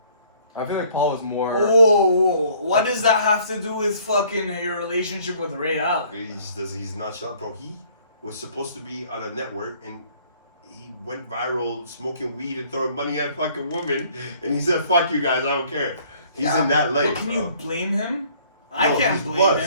I feel like Paul was more. Oh, what does that have to do with fucking your relationship with Ray Allen? He's not shot, bro. He was supposed to be on a network and he went viral smoking weed and throwing money at fucking women, and he said, "Fuck you guys, I don't care." He's in that life, But can bro. you blame him? I No, can't he's blame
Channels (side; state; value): both; inverted; correlation -0.58